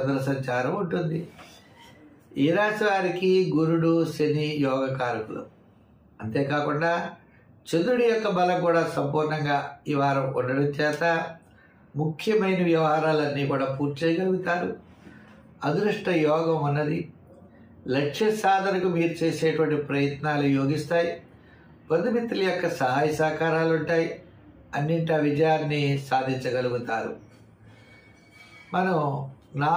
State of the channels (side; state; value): both; identical; correlation 1.00